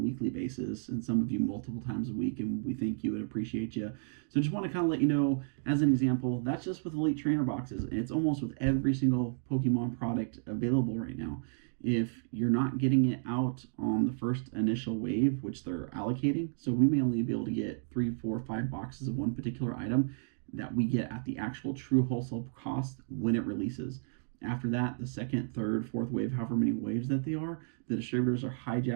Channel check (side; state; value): left; silent; digital silence